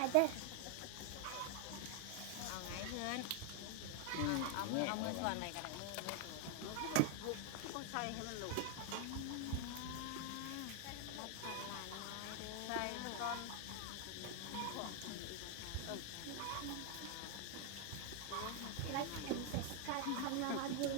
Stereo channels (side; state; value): both; different; correlation 0.00